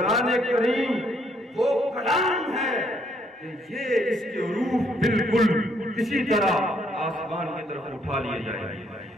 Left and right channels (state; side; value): normal; both; correlation 0.69